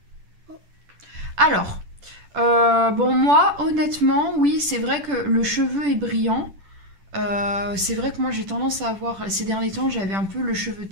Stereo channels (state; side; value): late; left; 10 ms